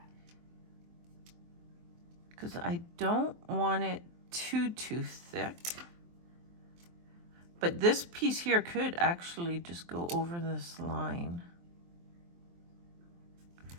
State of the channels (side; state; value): left; late; 23 ms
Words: because I don't want it too thick, But this piece here could actually just go over this line.